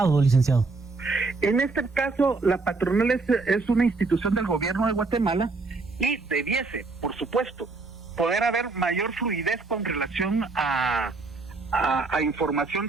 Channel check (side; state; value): left; quieter; 3.8 dB